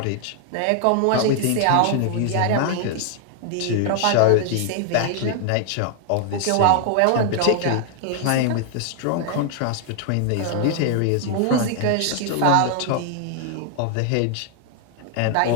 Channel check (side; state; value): both; different; correlation 0.00